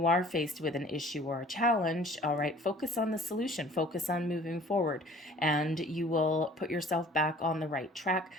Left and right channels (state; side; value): normal; both; correlation 0.50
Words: are faced with an issue or a challenge, all right, focus on the solution, focus on moving forward, and you will put yourself back on the right track